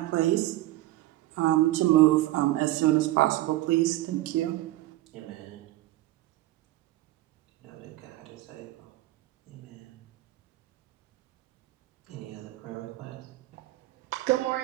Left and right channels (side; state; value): left; quieter; 16.6 dB